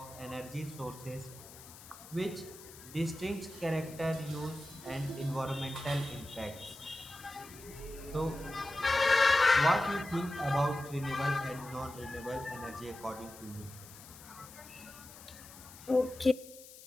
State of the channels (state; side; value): noise; left; hiss, 18 dB below the sound